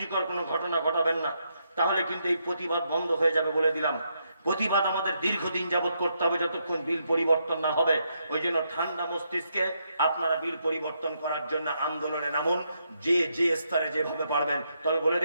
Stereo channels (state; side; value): inverted; both; correlation -0.78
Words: কোনো ঘটনা ঘটাবেন না। তাহলে কিন্তু এই প্রতিবাদ বন্ধ হয়ে যাবে বলে দিলাম। প্রতিবাদ আমাদের দীর্ঘদিন যাবত করতে হবে যতক্ষণ বিল পরিবর্তন না হবে। ওই জন্য ঠান্ডা মস্তিষ্কে আপনারা বিল পরিবর্তন করার জন্য আন্দোলনে নামুন, যে যে স্তরে যেভাবে পারবেন। তবে বলে